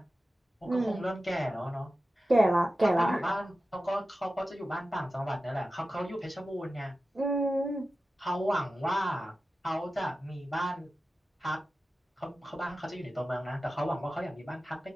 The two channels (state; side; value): normal; both; correlation 0.94